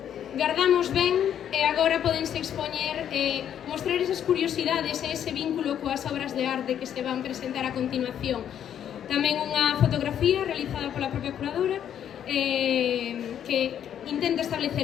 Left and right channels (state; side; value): quieter; right; 9.6 dB